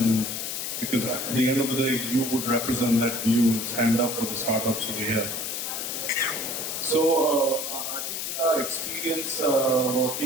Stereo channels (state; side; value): noise; left; hiss, 3 dB below the sound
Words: because at the end of the day, you would represent that view and stand up for the startups over here. So I think with our experience